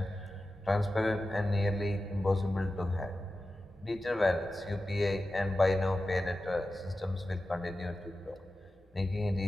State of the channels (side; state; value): both; normal; correlation 0.93